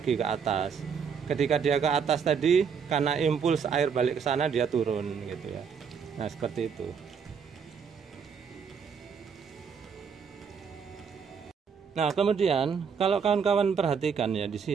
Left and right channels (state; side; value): quieter; left; 6.5 dB